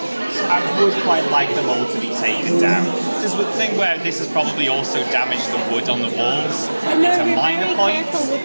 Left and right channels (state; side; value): inverted; both; correlation -1.00